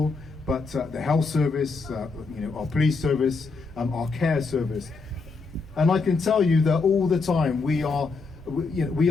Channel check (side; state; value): right; quieter; 4.2 dB